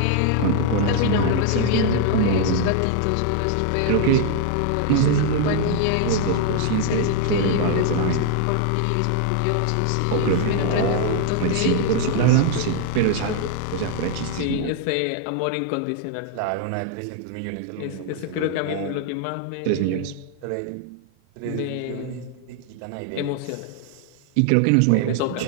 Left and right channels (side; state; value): both; different; correlation 0.00